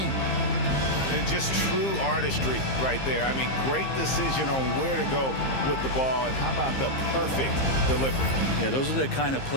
Just true artistry right there. I mean, great decision on where to go with the ball, and how about the perfect delivery? Yeah, those are the kind of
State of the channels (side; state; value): right; late; 15 ms